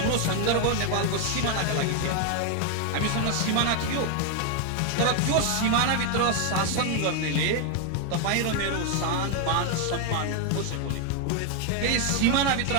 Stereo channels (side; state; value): both; different; correlation 0.01